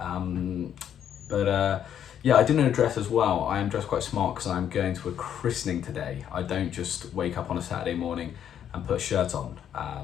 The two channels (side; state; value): right; quieter; 9.5 dB